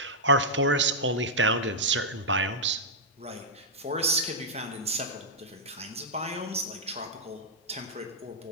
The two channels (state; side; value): normal; both; correlation -0.09